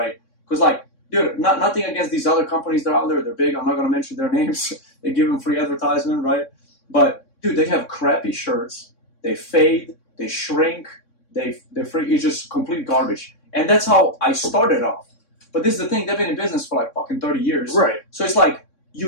because, like, dude, nothing against these other companies that are out there. They're big. I'm not going to mention their names. They give them free advertisement, right? But dude, they have crappy shirts. They fade. They shrink. It's just complete garbage. And that's how I started off. But this is the thing. They've been in business for like fucking 30 years. Right. So it's like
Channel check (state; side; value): late; right; 3.6 ms